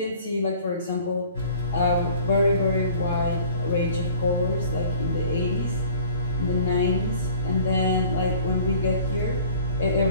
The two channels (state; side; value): inverted; both; correlation -0.49